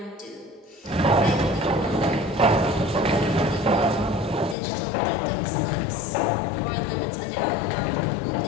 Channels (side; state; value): right; drops out; at 4.5 s